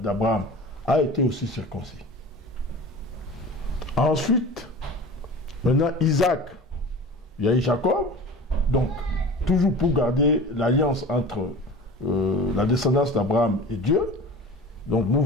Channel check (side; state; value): both; normal; correlation 0.37